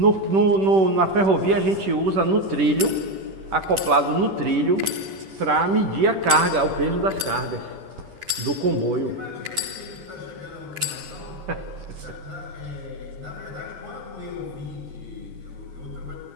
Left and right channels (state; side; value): late; left; 10 ms